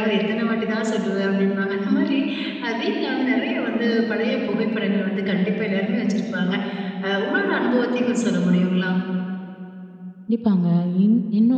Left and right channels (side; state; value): both; identical; correlation 1.00